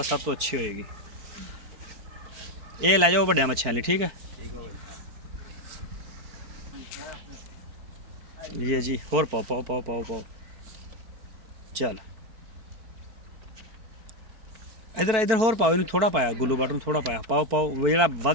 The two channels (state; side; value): late; left; 4.6 ms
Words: सब तो अच्छी होएगी। ये लै जाओ वड्डिया मच्छियां लिए, ठीक है ये जी। होर पाओ पाओ पाओ पाओ पाओ। चल इधर इधर होर पाओ, इन थोड़ा पाया गुल्लू बट थोड़ा पाया, पाओ पाओ। जो